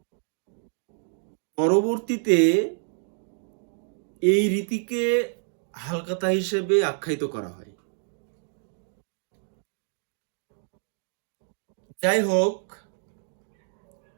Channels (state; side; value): silent; left; 59 dB below the other